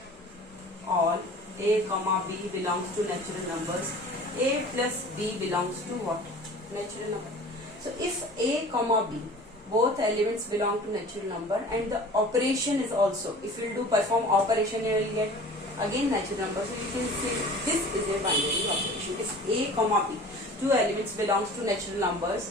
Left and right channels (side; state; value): both; normal; correlation 0.43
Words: all A comma B belongs to natural numbers, A plus B belongs to what? Natural number. So if A comma B, both elements belong to natural number and the operation is also, if you do perform operation, you will get again natural number. So you can say this is a binary operation. If A comma B, 2 elements belongs to natural numbers